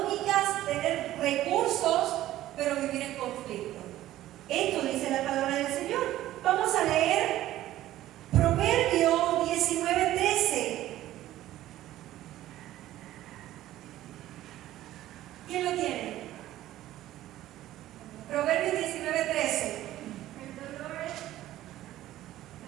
tener recursos, pero vivir en conflicto. Esto dice la palabra del Señor. Vamos a leer Proverbio 19:13. ¿Quién lo tiene? Proverbios 19:13. El dolor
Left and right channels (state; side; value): quieter; left; 14.3 dB